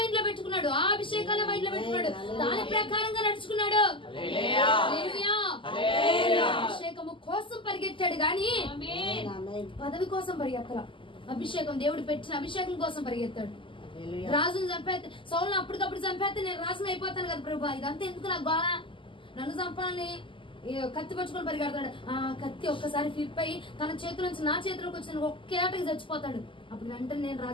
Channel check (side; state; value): right; late; 0.25 ms